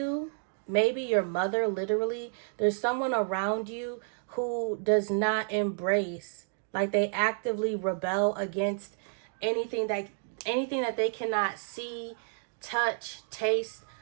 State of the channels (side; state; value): left; silent; 57 dB below the other